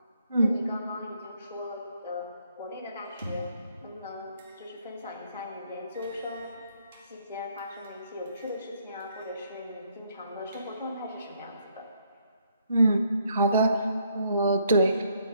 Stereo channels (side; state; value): both; inverted; correlation -0.70